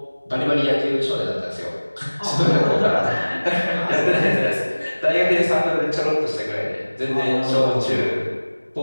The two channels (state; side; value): inverted; both; correlation -1.00